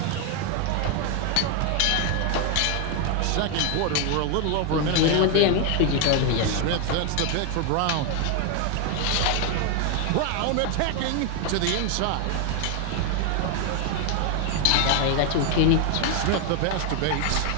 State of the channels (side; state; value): both; different; correlation 0.01